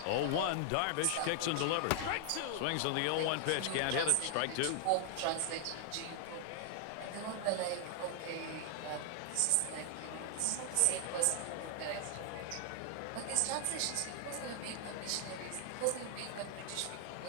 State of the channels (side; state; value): both; different; correlation 0.00